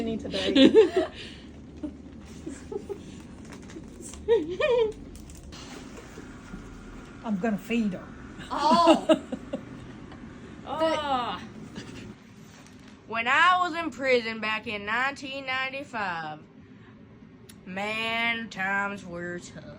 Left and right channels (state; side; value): identical; both; correlation 1.00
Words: today. I'm gonna feed her. Oh, Oh. When I was in prison back in 1995, man, times were